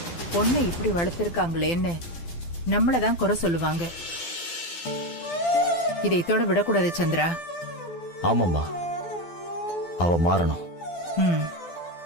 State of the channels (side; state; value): right; late; 12 ms